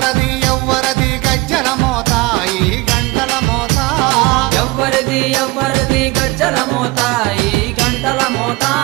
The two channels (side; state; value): left; quieter; 22.7 dB